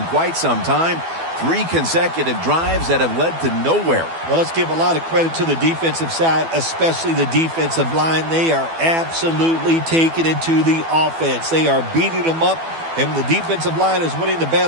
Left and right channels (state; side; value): late; left; 12 ms